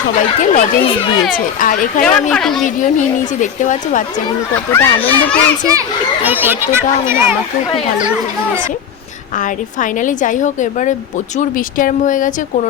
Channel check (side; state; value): right; quieter; 7.9 dB